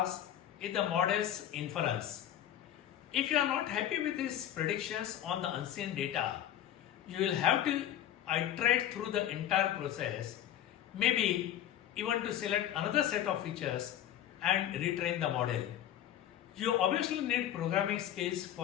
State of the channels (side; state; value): right; quieter; 11.3 dB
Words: is the model's inference. If you are not happy with these predictions on the unseen data, you will have to iterate through the entire process, maybe even to select another set of features and retrain the model. You obviously need programming skills